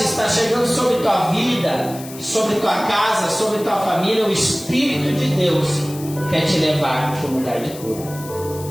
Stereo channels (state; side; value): noise; left; hiss, 16 dB below the sound